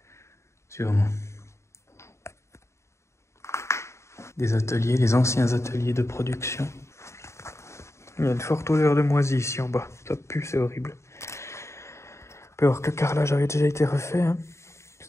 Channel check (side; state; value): right; late; 0.14 ms